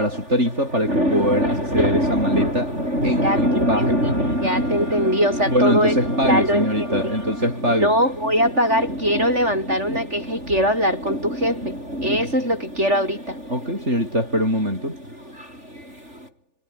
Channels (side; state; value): left; late; 3.4 ms